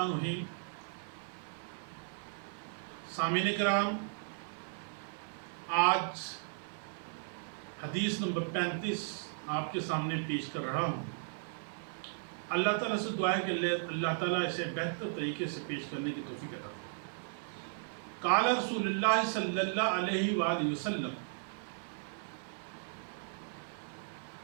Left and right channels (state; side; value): silent; left; 54 dB below the other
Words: الرحیم۔ سامعین کرام، آج حدیث نمبر 35 آپ کے سامنے پیش کر رہا ہوں۔ اللہ تعالیٰ سے دعا ہے کہ اللہ تعالیٰ اسے بہتر طریقے سے پیش کرنے کی توفیق عطا فرمائے۔ قال رسول اللہ صلی اللہ علیہ وآلہ وسلم،